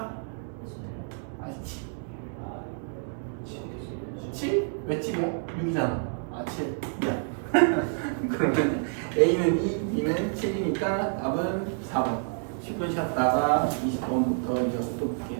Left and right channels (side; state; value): left; silent; 59 dB below the other